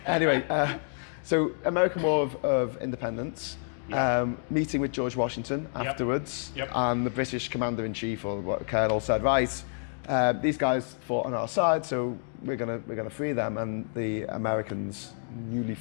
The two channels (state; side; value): silent; right; digital silence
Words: Anyway, so American War of Independence, meeting with George Washington afterwards, and the British commander-in-chief or colonel said, right, these guys fought on our side, so we're gonna free them. And the Americans, newly